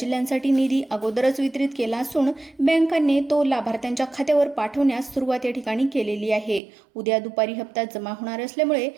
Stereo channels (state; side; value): drops out; left; at 6.6 s